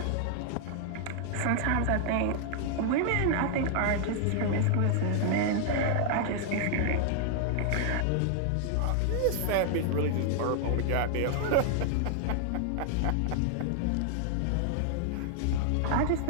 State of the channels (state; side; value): different; both; correlation 0.00